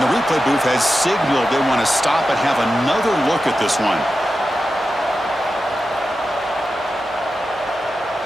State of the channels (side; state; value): both; normal; correlation 0.91